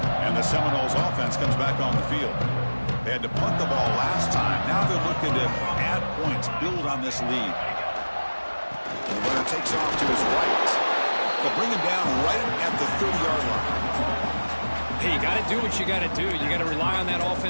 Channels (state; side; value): inverted; both; correlation -1.00